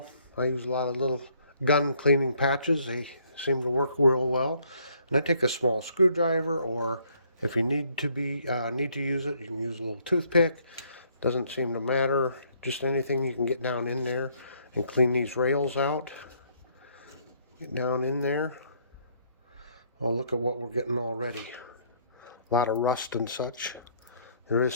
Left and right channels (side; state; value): both; inverted; correlation -0.66